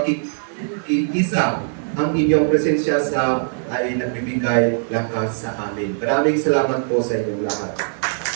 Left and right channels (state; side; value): silent; left; 58 dB below the other